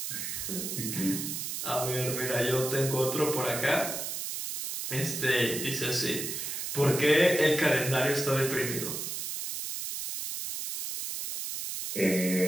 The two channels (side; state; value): right; noise; hiss, 4 dB below the sound